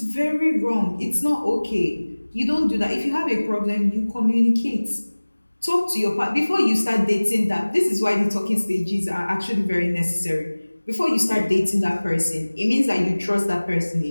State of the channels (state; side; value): inverted; both; correlation -1.00